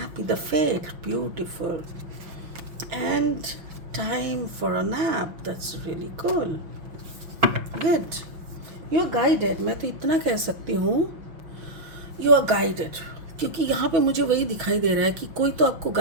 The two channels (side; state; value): left; late; 5.7 ms